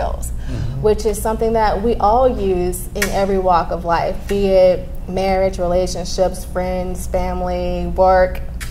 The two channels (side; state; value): both; identical; correlation 1.00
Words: which is something that we all use in every walk of life, be it marriage, relationships, friends, family, work,